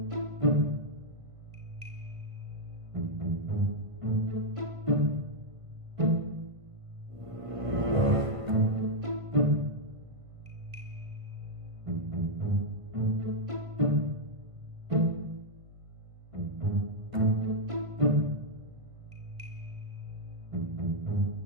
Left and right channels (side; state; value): left; late; 1.5 ms